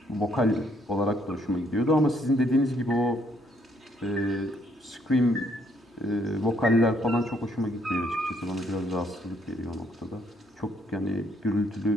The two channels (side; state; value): both; normal; correlation 0.69